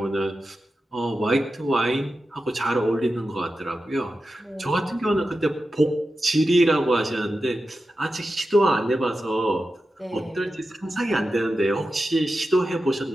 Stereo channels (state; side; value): normal; both; correlation 0.92